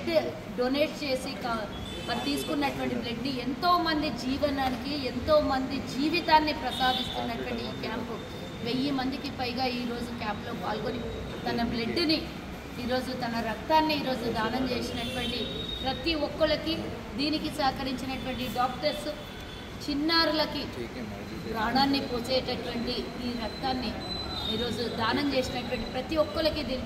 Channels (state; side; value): identical; both; correlation 1.00